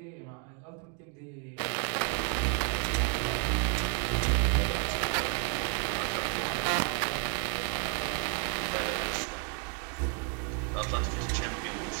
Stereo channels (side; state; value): left; quieter; 39.8 dB